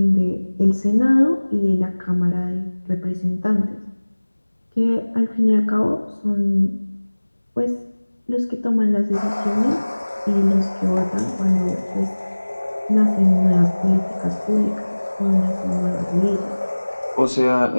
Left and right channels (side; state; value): both; inverted; correlation -1.00